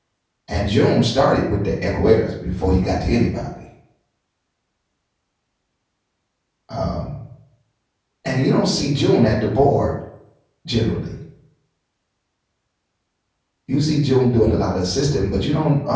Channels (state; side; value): identical; both; correlation 1.00